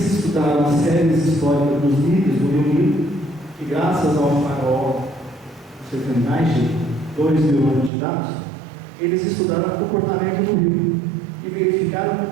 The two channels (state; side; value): drops out; left; at 7.9 s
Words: estudaram as séries históricas dos níveis do Rio Nilo, que graças ao farol, você tem mais de 2.000 anos de dados, eles estudaram o comportamento do rio e verificaram